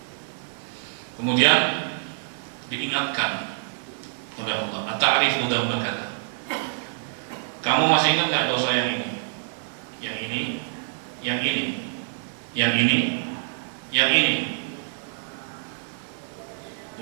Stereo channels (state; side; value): silent; left; 56 dB below the other